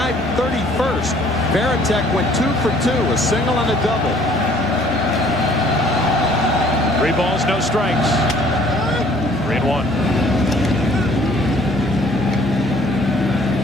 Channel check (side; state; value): both; normal; correlation 0.58